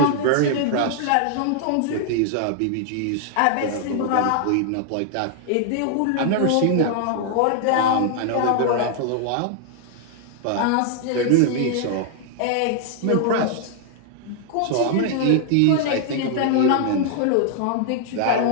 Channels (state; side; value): different; both; correlation 0.00